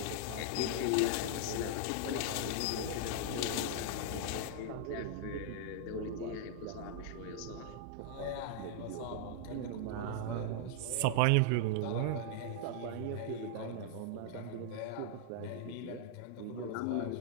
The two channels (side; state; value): both; different; correlation -0.01